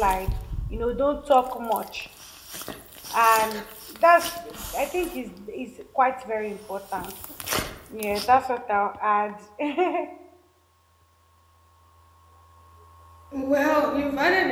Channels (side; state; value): both; identical; correlation 1.00